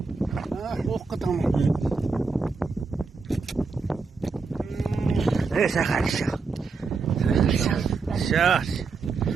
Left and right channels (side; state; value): left; quieter; 4.6 dB